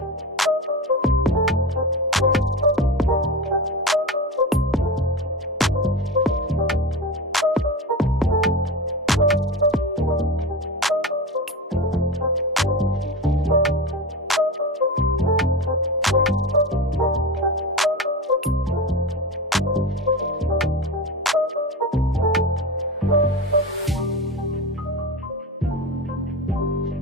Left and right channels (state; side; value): normal; both; correlation 0.25